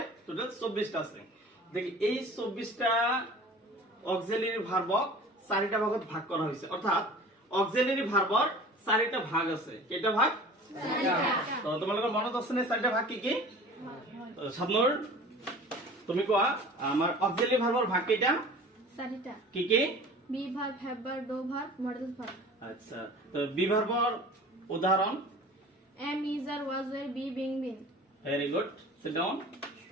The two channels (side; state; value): both; normal; correlation 0.42